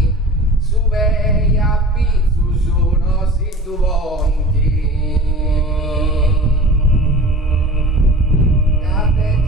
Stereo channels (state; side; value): normal; both; correlation 0.40